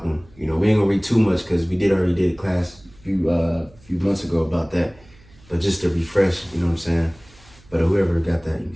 them. We ain't gonna read too much because we already did a class a few months ago about that, but just to refresh, you know what I'm saying. But whoever got that, you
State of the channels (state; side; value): noise; right; hum, 26 dB below the sound